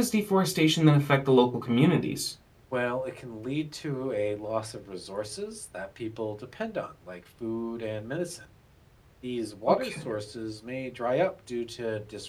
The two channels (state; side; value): identical; both; correlation 1.00